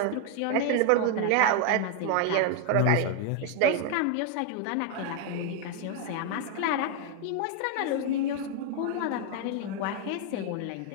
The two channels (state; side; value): different; both; correlation 0.01